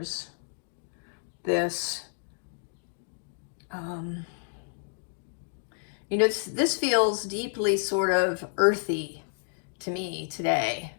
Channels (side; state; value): right; silent; digital silence